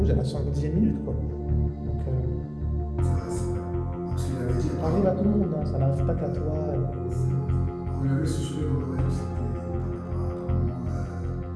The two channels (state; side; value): identical; both; correlation 1.00